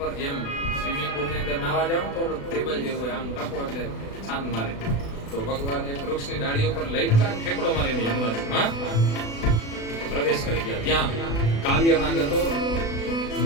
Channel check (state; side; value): late; right; 36 ms